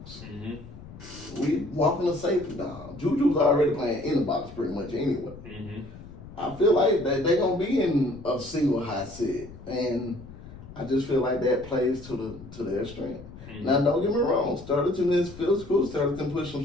Mm-hmm. We walking the safety down. Juju's already playing in the box pretty much anyway. Mm-hmm. I feel like they're going to be in a single high set. And I just feel like that plays to their strength. Mm-hmm. Now, don't get me wrong. Starleton is physical. Starleton pushed some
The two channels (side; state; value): left; noise; rumble, 16 dB below the sound